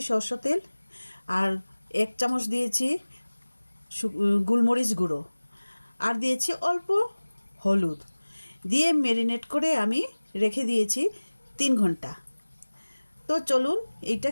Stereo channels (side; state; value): both; inverted; correlation -1.00